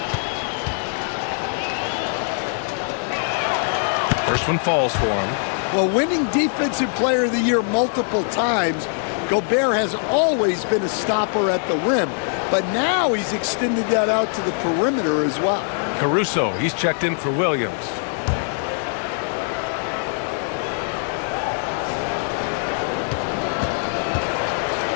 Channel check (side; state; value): right; silent; 59 dB below the other